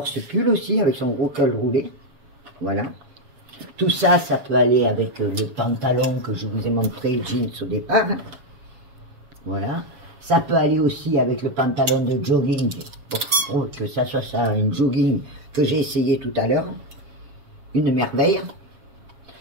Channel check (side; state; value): left; late; 7.3 ms